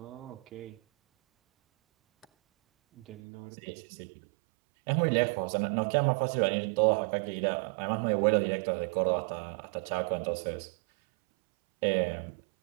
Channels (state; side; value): drops out; left; at 3.2 s